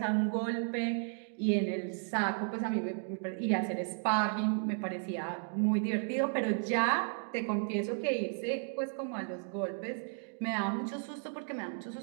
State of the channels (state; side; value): silent; left; 55 dB below the other